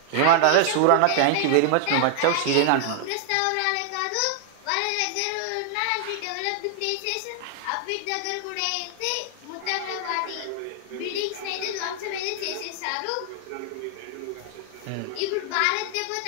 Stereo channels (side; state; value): both; different; correlation -0.01